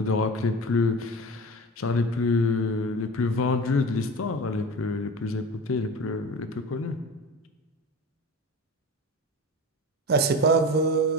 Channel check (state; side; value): normal; both; correlation 0.31